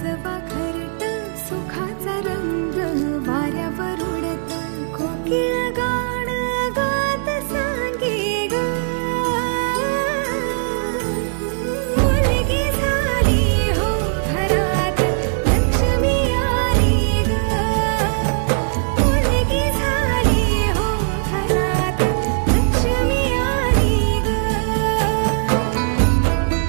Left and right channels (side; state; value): left; silent; digital silence